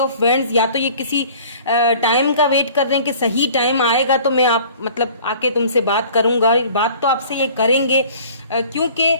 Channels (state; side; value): inverted; both; correlation -0.49